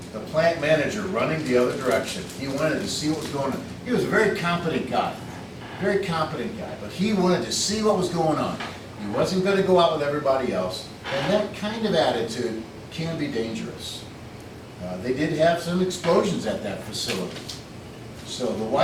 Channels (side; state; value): both; identical; correlation 1.00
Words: the plant manager running the other direction. He wanted to see what was going on. He was a very competent guy. Very competent guy, but he wanted to see what was going on. He wasn't going to go out with everybody else, and that kind of attitude can be dangerous. They did have some explosions at that facility. So the